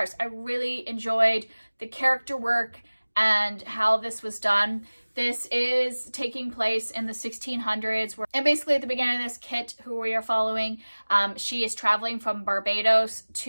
I really enjoyed the character work and how this was done. This is taking place in the 1600s, and basically at the beginning of this, Kit, who we are following, she is traveling from Barbados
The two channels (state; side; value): inverted; both; correlation -1.00